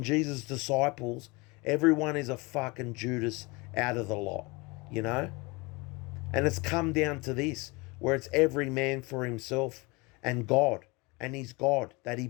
Jesus' disciples. Everyone is a fucking Judas out of the lot, you know? And it's come down to this, where it's every man for himself and God, and his God that he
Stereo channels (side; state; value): right; quieter; 26.0 dB